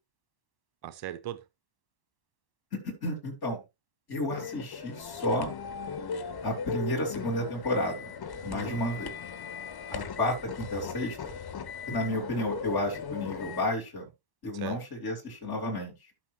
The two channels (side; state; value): right; late; 1.1 ms